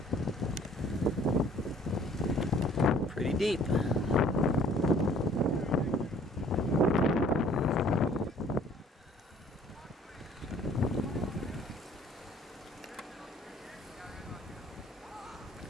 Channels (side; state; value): both; normal; correlation 0.57